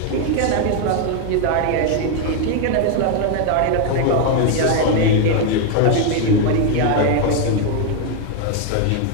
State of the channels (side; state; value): both; different; correlation 0.01